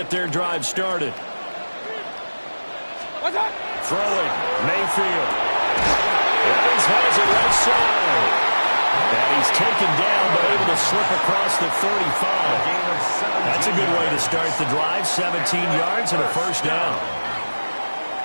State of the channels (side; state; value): both; inverted; correlation -1.00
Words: their drive started. Throwing, Mayfield. Evans has it left side. And he's taken down, but able to slip across the 35. That's a good way to start the drive. 17 yards and a first down.